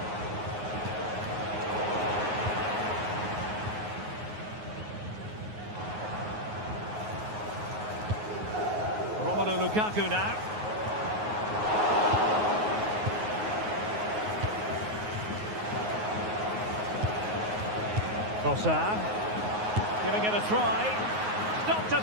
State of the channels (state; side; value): late; left; 9.5 ms